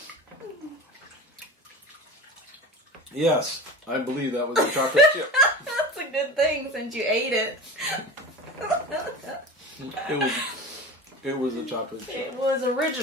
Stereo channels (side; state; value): both; normal; correlation 0.31